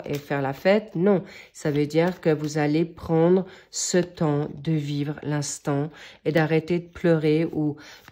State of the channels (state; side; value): identical; both; correlation 1.00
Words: et faire la fête. Non, ça veut dire que vous allez prendre ce temps de vivre l'instant et d'arrêter de pleurer ou